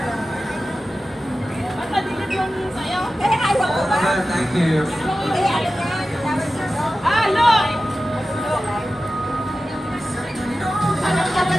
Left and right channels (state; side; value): normal; both; correlation 0.94